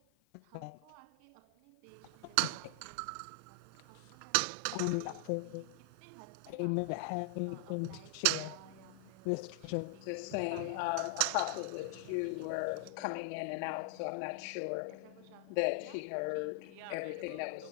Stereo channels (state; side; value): different; both; correlation 0.00